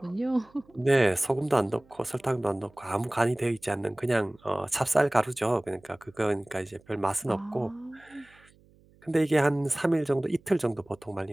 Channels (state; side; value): noise; right; hum, 29 dB below the sound